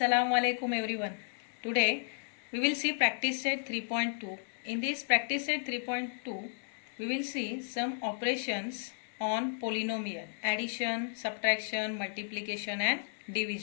alaikum everyone. Today we will see practice set 3.2. In this practice set 3.2 we will see some operations on polynomial, addition, subtraction, multiplication and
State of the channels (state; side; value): silent; right; digital silence